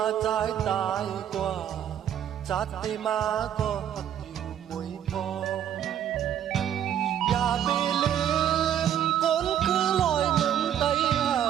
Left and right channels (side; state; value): left; quieter; 10.0 dB